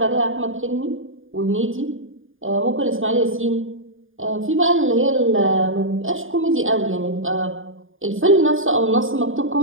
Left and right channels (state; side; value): late; left; 0.59 ms